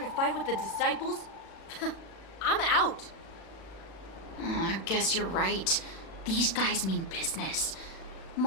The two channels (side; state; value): right; late; 36 ms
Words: a fight with the Disciples, I'm out. I guess you're right. These guys mean business.